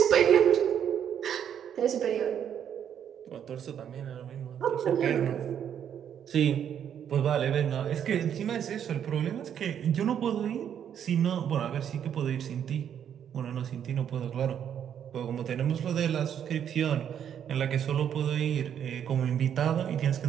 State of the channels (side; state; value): left; quieter; 9.0 dB